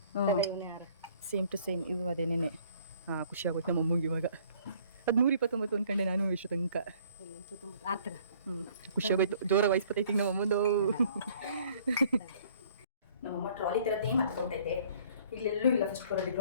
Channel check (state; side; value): inverted; both; correlation -0.57